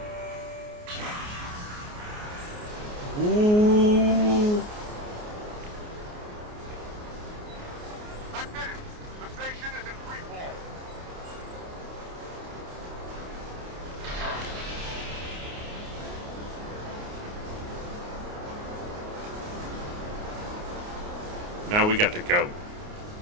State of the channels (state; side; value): late; left; 29 ms